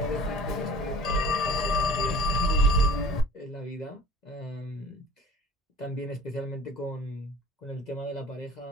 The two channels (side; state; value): both; normal; correlation 0.46